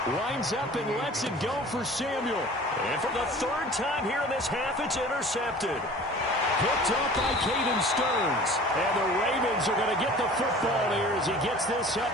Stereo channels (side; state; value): both; normal; correlation 0.44